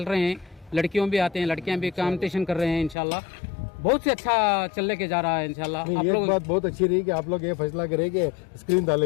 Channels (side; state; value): right; drops out; at 3.0 s